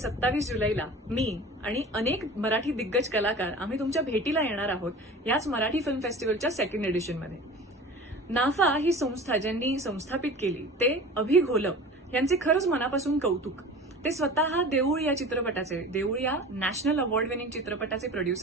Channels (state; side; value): normal; both; correlation 0.38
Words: जुलैला मी आणि अनेक मराठी दिग्गज कलाकार आम्ही तुमच्या भेटीला येणार आहोत याच मराठी फिल्म फेस्टिवलच्या सेकंड एडिशनमध्ये. नाफा ही संस्था ज्यांनी संस्थापित केली ते अभि घोलप यांचे खरंच मनापासून कौतुक. ते स्वतः देऊळ या चित्रपटाचे, देऊळ या नॅशनल अवॉर्ड विनिंग चित्रपटाचे